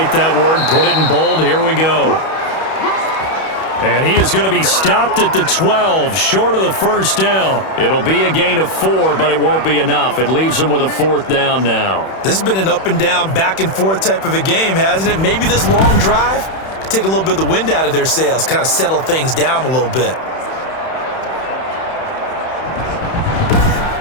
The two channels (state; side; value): late; right; 31 ms